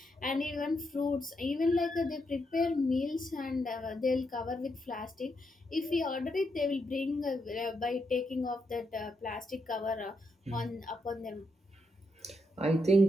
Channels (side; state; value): both; normal; correlation 0.81